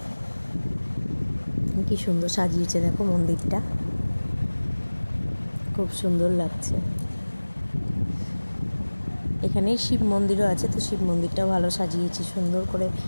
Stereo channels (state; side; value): inverted; both; correlation -1.00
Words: কি সুন্দর সাজিয়েছে দেখো মন্দিরটা, খুব সুন্দর লাগছে। এখানেই শিব মন্দিরও আছে, তো শিব মন্দিরটাও ভালো সাজিয়েছে, সুন্দর করে